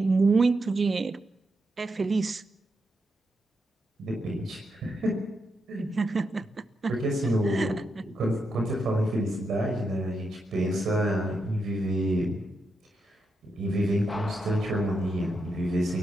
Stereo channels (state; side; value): normal; both; correlation 0.84